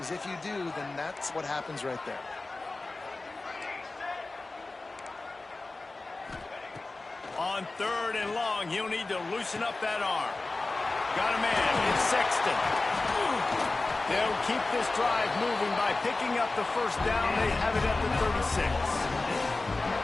if you do, then that's what happens right there. On third and long, he'll need to loosen up that arm. Got a man, it's Sexton. They'll keep this drive moving by picking up the first down. They have it at the 36.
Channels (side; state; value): right; quieter; 3.3 dB